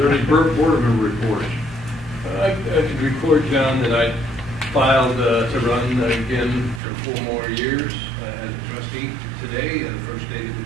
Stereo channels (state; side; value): drops out; left; at 6.8 s